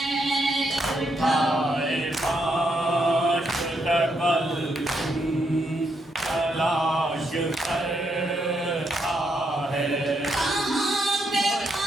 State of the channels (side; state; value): both; normal; correlation 0.78